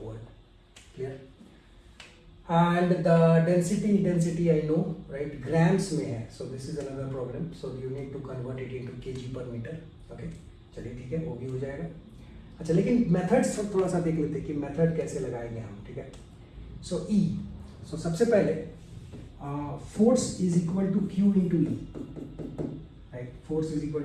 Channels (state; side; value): identical; both; correlation 1.00